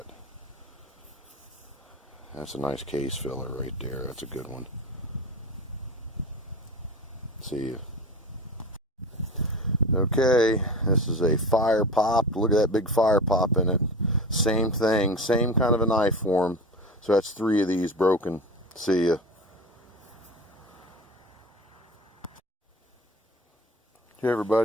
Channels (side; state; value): both; normal; correlation 0.32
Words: That's a nice case filler right there. That's a good one. See ya. Okay, this is a fire pop. Look at that big fire pop in it. Same thing, same kind of a knife form. So that's 3 of these broken. See ya. Hey